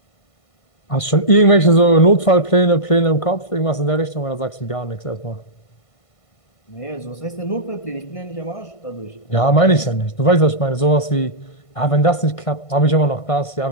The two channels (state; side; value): late; right; 1.5 ms